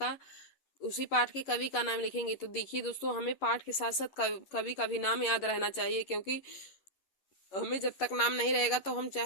उसी पाठ के कवि का नाम लिखेंगे। तो देखिए दोस्तों, हमें पाठ के साथ साथ कवि का भी नाम याद रहना चाहिए, क्योंकि हमें जब तक नाम नहीं रहेगा तो हम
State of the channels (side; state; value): right; late; 11 ms